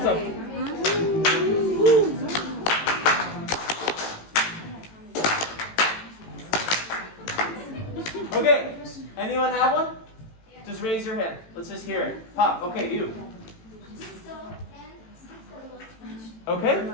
up. Okay, anyone have one? Just raise your hand. Let's just hear it. Pop, okay, you. Okay,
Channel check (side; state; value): right; late; 18 ms